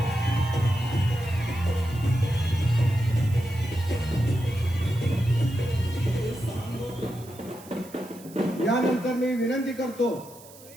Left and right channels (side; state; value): right; noise; hiss, 21 dB below the sound